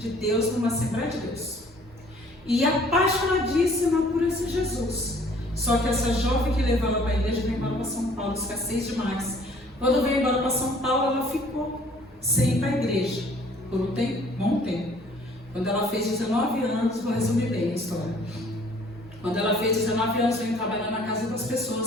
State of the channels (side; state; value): both; normal; correlation 0.56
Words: Deus numa Assembleia de Deus e apaixonadíssima por esse Jesus. Só que essa jovem que levou ela para a igreja veio embora para São Paulo, escassez demais. Quando veio embora para São Paulo, ela ficou sem ir para a igreja por um tempo, bom tempo. Quando ela fez 19 anos, vou resumir bem a história. Quando ela fez 19 anos, veio trabalhar na casa das pessoas